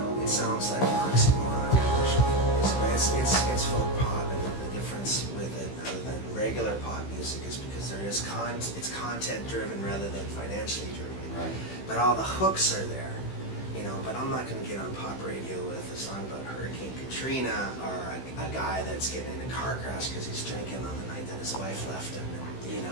it sounds like an oxymoron, commercial folk, but it's folk pop, and the difference with it, other than regular pop music, is because there is it's content driven rather than financially driven. Right. But all the hooks are there. You know, but I'm not going to get on pop radio with a song about Hurricane Katrina or a guy that's getting in a car crash because he's drinking on the night that his wife left him. And, you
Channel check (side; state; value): right; late; 16 ms